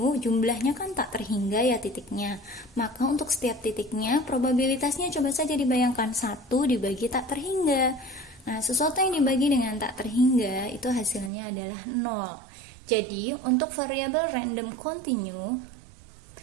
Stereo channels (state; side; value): drops out; left; at 11.3 s